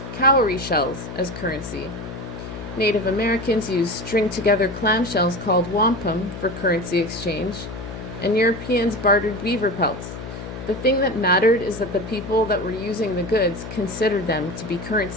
cowrie shells as currency. Native Americans used string-together clamshells called wampum for currency exchange, and Europeans bartered beaver pelts. The thing that mattered is that the people that were using the goods considered them to be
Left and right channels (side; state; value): left; noise; hum, 10 dB below the sound